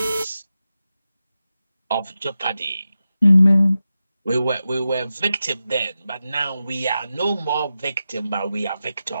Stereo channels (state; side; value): inverted; both; correlation -0.91